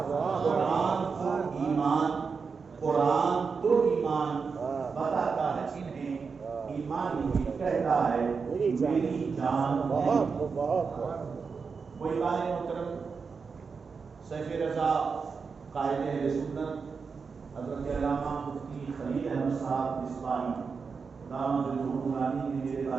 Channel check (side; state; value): left; quieter; 5.3 dB